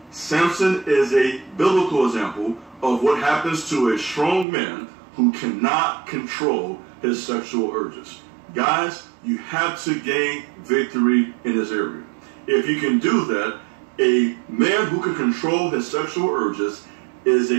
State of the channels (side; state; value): left; drops out; at 4.5 s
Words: Samson is a biblical example of what happens to a strong man who cannot control his sexual urges. Guys, you have to gain victory in this area. If you can do that, a man who can control his sexual urges is